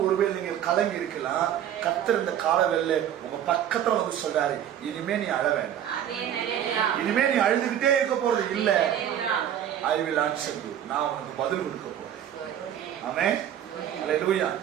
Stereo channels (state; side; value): quieter; left; 10.2 dB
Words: ஒருவேளை நீங்க கலங்கி இருக்கலாம். கர்த்தர் இந்த காலவெல்ல உங்க பக்கத்துல வந்து சொல்றாரு, இனிமே நீ அழ வேண்டாம், இனிமே நீ அழுதுகிட்டே இருக்க போறது இல்ல. I will answer you. நான் உனக்கு பதில் கொடுக்க போறேன். ஆமென். அல்லேலூயா.